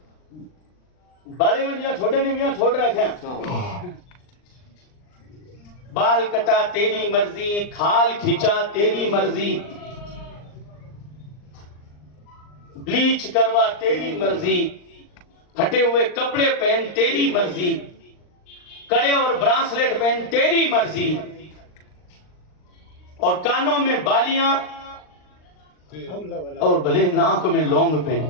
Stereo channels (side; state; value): right; late; 39 ms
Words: بڑے میں دیا چھوٹے نے بھی یہاں چھوڑ رکھے ہیں. بال کٹا تیری مرضی، کھال کھینچا تیری مرضی، بلیچ کروا تیری مرضی، پھٹے ہوئے کپڑے پہن تیری مرضی، کڑے اور برانسلیٹ پہن تیری مرضی، اور کانوں میں بالیاں اور بھلے ناک میں لونگ پہن.